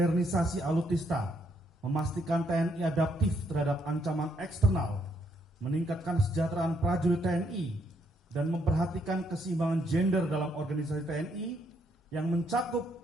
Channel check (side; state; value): both; normal; correlation 0.73